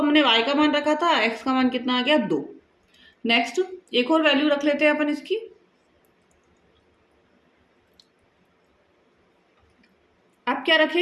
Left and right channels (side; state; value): both; identical; correlation 1.00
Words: y का मान रखा था, x का मान कितना आ गया 2। नेक्स्ट एक और वैल्यू रख लेते हैं अपन इसकी, अब क्या